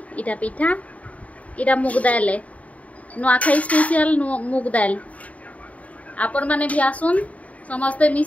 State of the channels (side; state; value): right; late; 0.068 ms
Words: इटा पिठा इटा मुग दाल नुआखाई स्पेशल मुग दाल आपण माने भी आसुन समस्ते